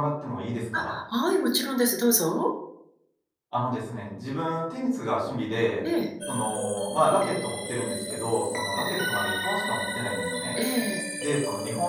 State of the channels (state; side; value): identical; both; correlation 1.00